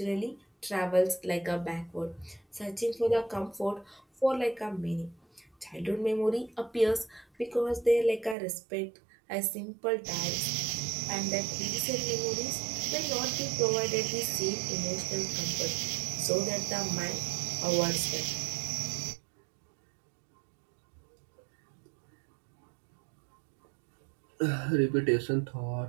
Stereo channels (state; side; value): drops out; left; at 8.3 s